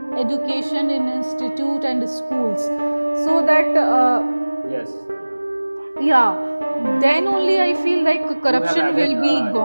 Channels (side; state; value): both; inverted; correlation -1.00